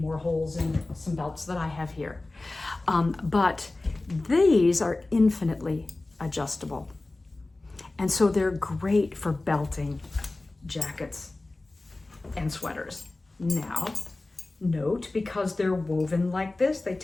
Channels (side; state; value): right; quieter; 3.0 dB